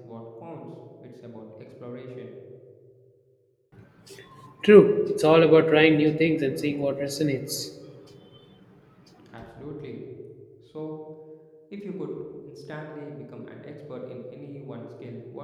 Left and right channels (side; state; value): both; identical; correlation 1.00